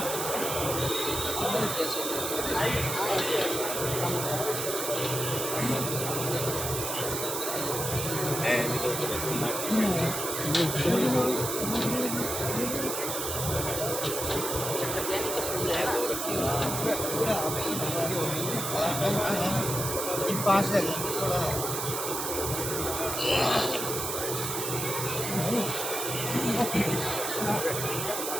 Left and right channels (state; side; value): noise; right; hiss, 3 dB below the sound